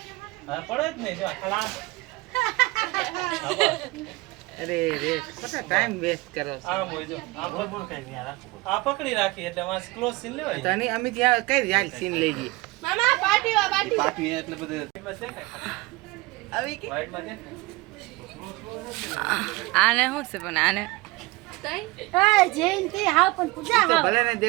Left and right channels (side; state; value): left; quieter; 21.8 dB